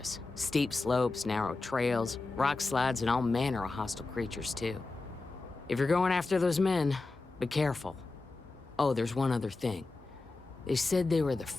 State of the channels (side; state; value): right; quieter; 3.5 dB